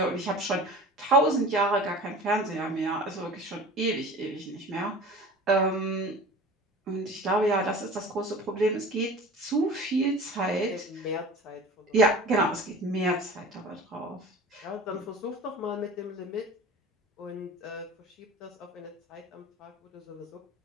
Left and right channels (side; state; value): both; normal; correlation 0.39